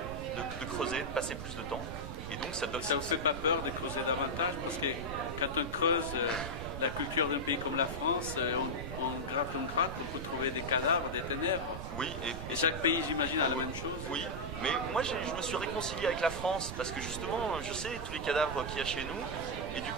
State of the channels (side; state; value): right; noise; rumble, 7 dB below the sound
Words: creuser, de passer plus de temps. Et donc ça vous fait pas peur de creuser davantage? Parce que quand on creuse la culture d'un pays comme la France, on gratte, on peut trouver des cadavres, des ténèbres. Oui. Et chaque pays, j'imagine, a la même chose. Oui, mais moi je me suis réconcilié avec la France parce que justement, je sais tous les cadavres qu'il y a chez nous. Et du